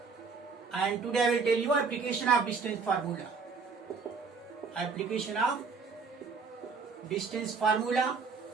And today I will tell you application of distance formula. Application of distance formula.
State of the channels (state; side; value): quieter; left; 5.0 dB